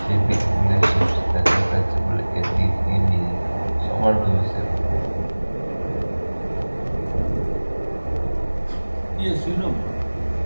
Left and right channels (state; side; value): inverted; both; correlation -1.00